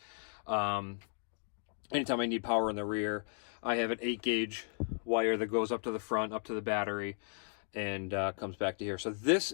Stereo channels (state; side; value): silent; right; 54 dB below the other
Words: Anytime I need power in the rear, I have an 8-gauge wire that goes up to the front, up to the battery, and comes back to here. So this